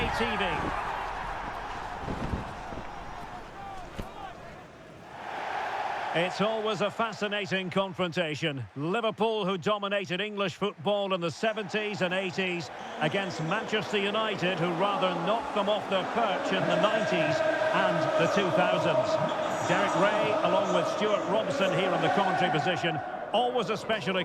TV. It's always a fascinating confrontation. Liverpool, who dominated English football in the 70s and 80s, against Manchester United, who rather knocked them off their perch in the 90s and the 2000s. Derek Ray, along with Stuart Robson here in the commentary position. Always a special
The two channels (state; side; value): identical; both; correlation 1.00